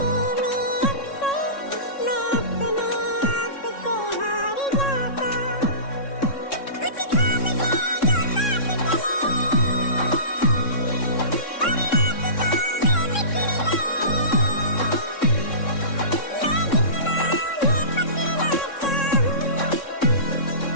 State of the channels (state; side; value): late; right; 3.6 ms